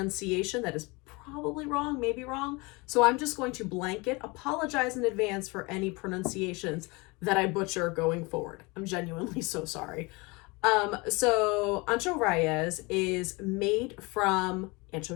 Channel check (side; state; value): right; quieter; 26.1 dB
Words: that is probably wrong, maybe wrong. So I'm just going to blanket apologize in advance for any pronunciations that I butcher going forward. I'm genuinely so sorry. So Ancho Reyes is made from